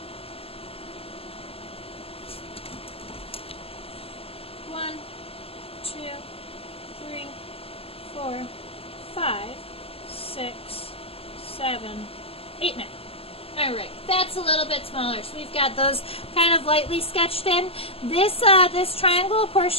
1, 2, 3, 4, 5, 6, 7, 8, 9. Alright, that's a little bit smaller. So we've got those kind of lightly sketched in. This triangle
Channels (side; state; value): right; late; 0.28 ms